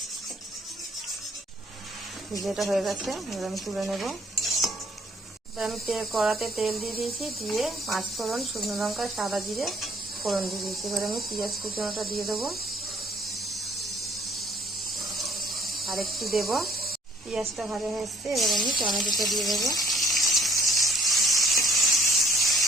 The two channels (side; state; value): both; normal; correlation 0.60